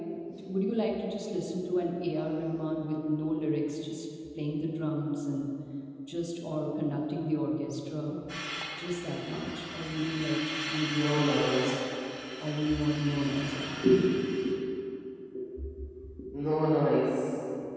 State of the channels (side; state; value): both; identical; correlation 1.00